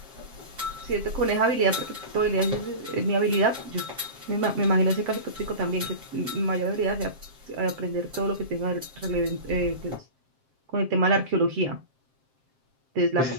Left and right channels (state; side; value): late; left; 7.6 ms